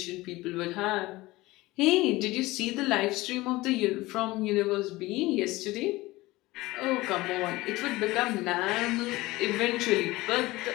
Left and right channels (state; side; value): quieter; right; 19.7 dB